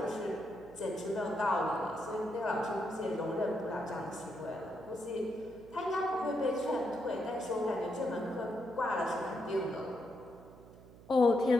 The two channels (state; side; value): noise; right; hum, 20 dB below the sound